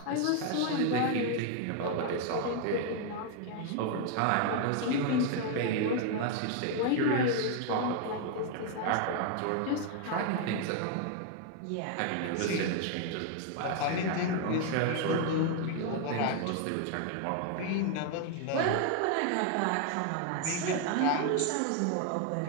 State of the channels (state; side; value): different; both; correlation 0.00